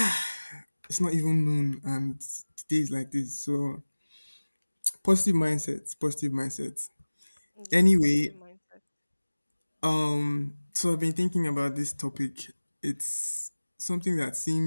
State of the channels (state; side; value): inverted; both; correlation -1.00